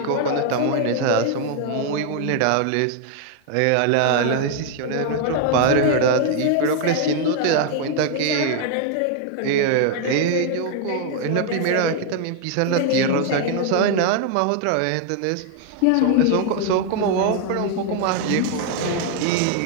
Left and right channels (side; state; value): both; different; correlation 0.00